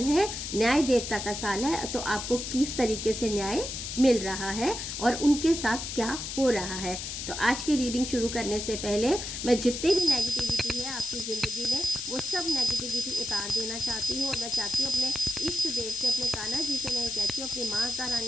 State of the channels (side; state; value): left; noise; hiss, 6 dB below the sound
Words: है, न्याय देवता का साल है। तो आपको किस तरीके से न्याय मिल रहा है और उनके साथ क्या हो रहा है। तो आज की रीडिंग शुरू करने से पहले मैं जितनी भी नेगेटिविटी है आपकी ज़िंदगी में वो सब नेगेटिविटी उतार देना चाहती हूँ। और मैं चाहती हूँ अपने इष्ट देव से, अपने कान्हा जी से मैं ये कहती हूँ, अपनी माता